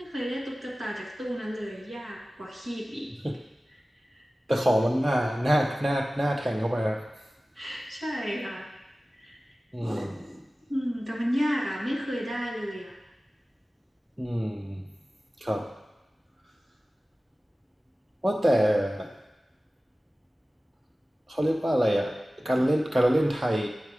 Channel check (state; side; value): normal; both; correlation 0.97